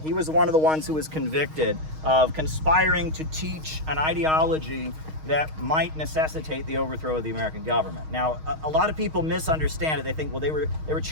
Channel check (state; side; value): late; left; 6.4 ms